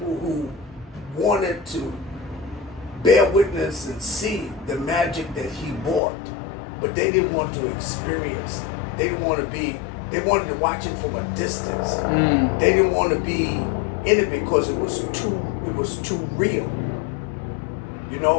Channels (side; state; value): right; drops out; at 6.0 s